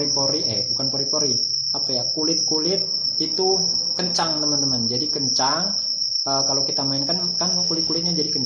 kulit-kulit itu kencang teman-teman. Jadi kencang, kalau kita mainkan kan kulit-kulitnya jadi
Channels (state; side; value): identical; both; correlation 1.00